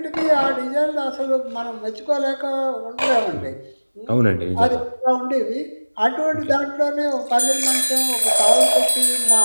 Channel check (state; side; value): inverted; both; correlation -1.00